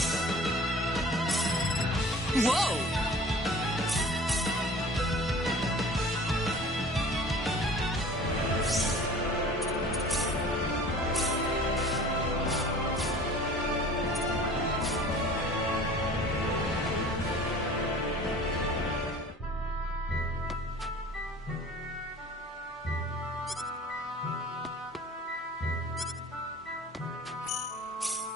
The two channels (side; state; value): both; normal; correlation 0.45